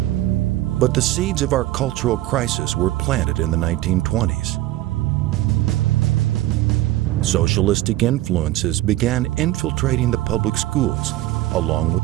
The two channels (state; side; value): quieter; left; 15.8 dB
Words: But the seeds of our cultural crisis were planted in the 1920s. Socialistic influences began infiltrating the public schools, along with